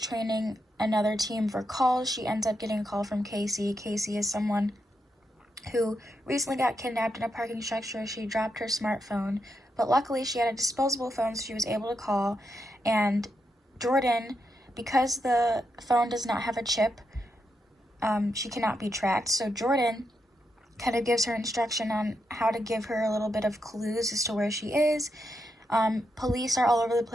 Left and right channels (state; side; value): normal; both; correlation 0.83